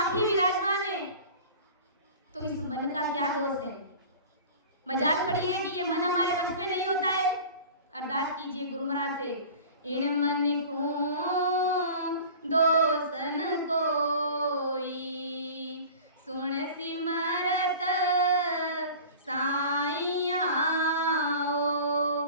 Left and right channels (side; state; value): both; inverted; correlation -0.40